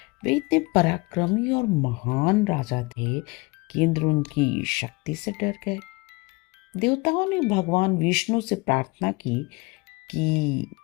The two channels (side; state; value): right; quieter; 25.7 dB